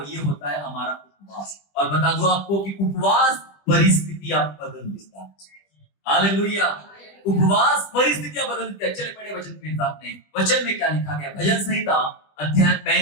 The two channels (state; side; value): late; right; 20 ms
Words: ये होता है हमारा उपवास। और बता दूं आपको कि उपवास परिस्थितियां बदल देता है। हालेलुया, उपवास परिस्थितियां बदल देता है। चले पढ़े वचन के साथ में, वचन में क्या लिखा गया? भजन संहिता अध्याय